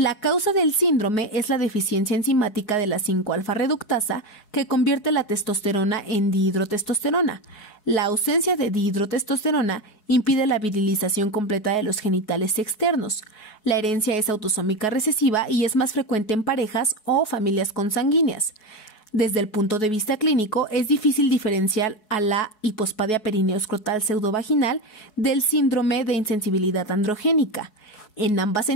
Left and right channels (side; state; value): right; late; 4.7 ms